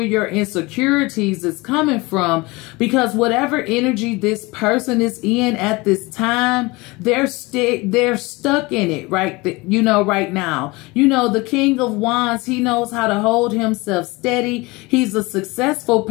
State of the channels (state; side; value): quieter; right; 23.7 dB